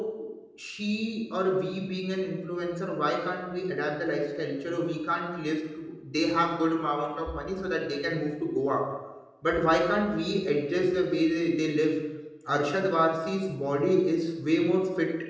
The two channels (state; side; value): identical; both; correlation 1.00